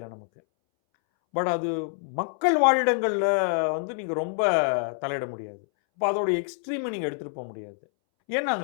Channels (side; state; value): right; silent; 61 dB below the other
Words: நமக்கு. பட் அது மக்கள் வாழிடங்களில் வந்து நீங்கள் ரொம்ப தலையிட முடியாது. இப்போ அதோடைய எக்ஸ்ட்ரீமை நீங்கள் எடுத்துகிட்டு போக முடியாது.